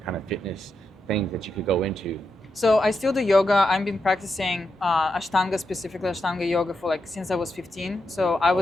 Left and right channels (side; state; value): both; normal; correlation 0.85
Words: kind of fitness things that you could go into? So I still do yoga. I've been practicing Ashtanga, specifically Ashtanga yoga, for like since I was 15. So I